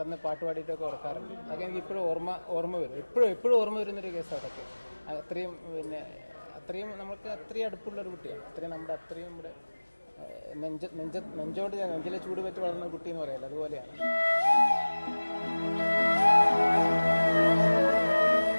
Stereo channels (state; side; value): inverted; both; correlation -1.00